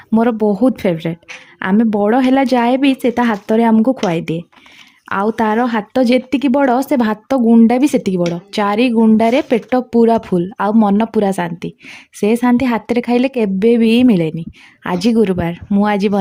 मोर बहुत फेवरेट। आमे बड़ हैला जाए भी से ता हाथ रे हमको खुआई दिए। आउ तार हाथ जेतिकी बड़ से भात गुंडा भी सेतिकी बड़ चारि गुंडारे पेट पूरा फुल आउ मन पूरा शांति। से शांति हाथ रे खाइले केबे भी मिलेनी। आज गुरुवार मु आज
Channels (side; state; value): both; identical; correlation 1.00